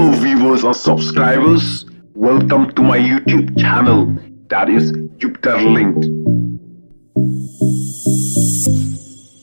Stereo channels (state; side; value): inverted; both; correlation -1.00